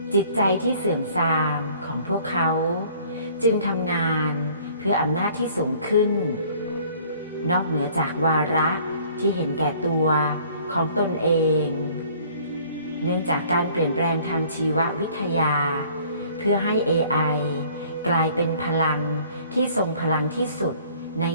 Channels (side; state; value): both; inverted; correlation -0.55